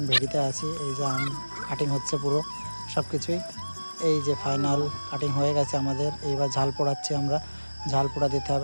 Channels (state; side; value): inverted; both; correlation -1.00